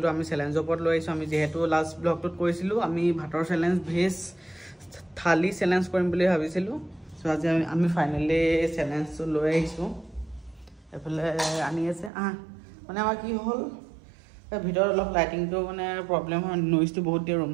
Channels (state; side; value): drops out; left; at 12.1 s